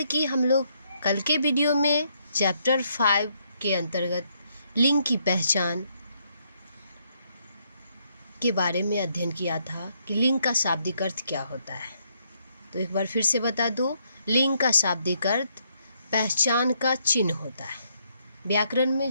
कि हम लोग कल के वीडियो में चैप्टर 5 के अंतर्गत लिंग की पहचान के बारे में अध्ययन किया था कि लिंग का शाब्दिक अर्थ क्या होता है। तो एक बार फिर से बता दूं, लिंग का शाब्दिक अर्थ पहचान का चिन्ह होता है। व्याकरण में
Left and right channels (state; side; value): inverted; both; correlation -0.73